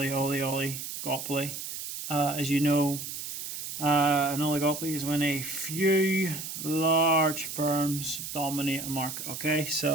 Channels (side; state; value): right; noise; hiss, 7 dB below the sound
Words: As you know, an oligopoly is when a few large firms dominate a market. Okay,